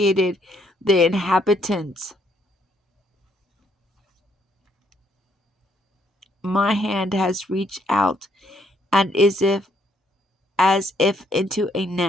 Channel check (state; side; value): normal; both; correlation 0.70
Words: the inhabitants. My hand has reached out and as if into a